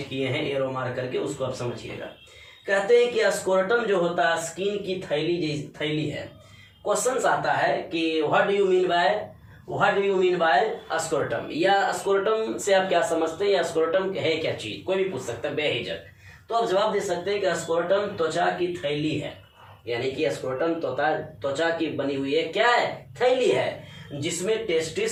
किए हैं एरो मार करके, उसको आप समझिएगा। कहते हैं कि स्क्रोटम जो होता है स्किन की थैली है। क्वेश्चंस आता है कि what do you mean by scrotum, या स्क्रोटम से आप क्या समझते हैं, या स्क्रोटम है क्या चीज, कोई भी पूछ सकता है बेहिचक। तो आप जवाब दे सकते हैं कि स्क्रोटम त्वचा की थैली है, यानी कि स्क्रोटम त्वचा की बनी हुई है, क्या है? थैली है, जिसमें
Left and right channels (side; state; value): both; identical; correlation 1.00